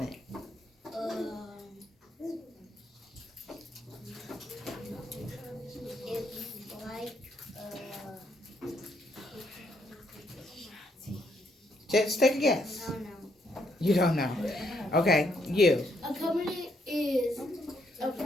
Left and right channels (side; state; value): both; normal; correlation 0.74